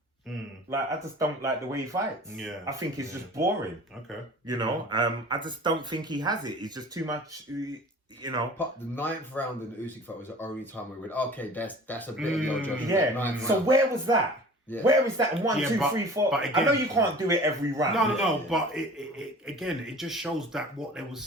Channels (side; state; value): both; normal; correlation 0.43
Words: Like I just don't like the way he fights. Yeah, I think he's just boring. Okay, I just don't think he has it. He's just too much. But the 9th round in the Usyk fight was the only time we went, okay, that's a bit of your judgment. Yeah. So where was that? Yeah. Where is that? 1, 2, 3, 4. But again, I know you can't do it every round. No. But it just shows that what they were